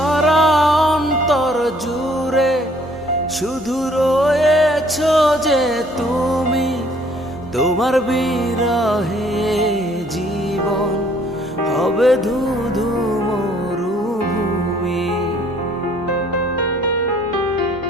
অন্তর জুড়ে শুধু রয়েছো যে তুমি, তোমার বিরহে জীবন হবে ধুধু মরুভূমি।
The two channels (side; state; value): both; normal; correlation 0.61